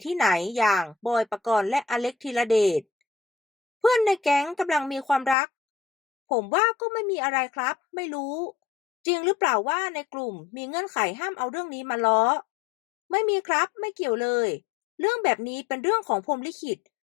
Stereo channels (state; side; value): drops out; right; at 5.4 s